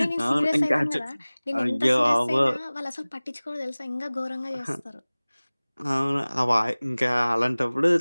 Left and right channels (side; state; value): both; inverted; correlation -1.00